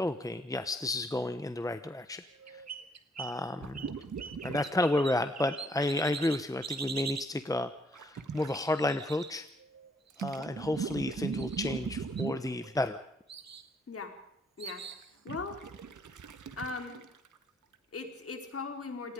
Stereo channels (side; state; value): both; normal; correlation 0.68